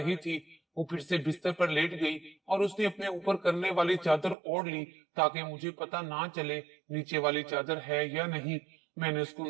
थी। वो फिर से बिस्तर पर लेट गई और उसने अपने ऊपर करने वाली चादर ओढ़ ली ताकि मुझे पता ना चले नीचे वाली चादर है या नहीं। मैंने उसको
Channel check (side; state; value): left; drops out; at 4.4 s